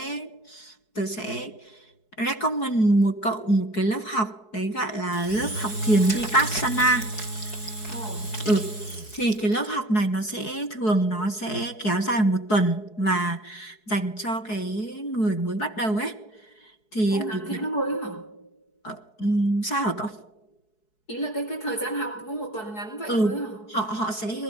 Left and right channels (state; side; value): late; right; 4.7 ms